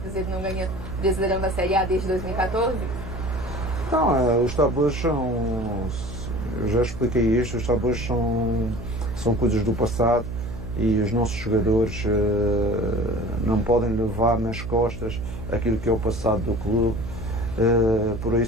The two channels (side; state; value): right; noise; hum, 8 dB below the sound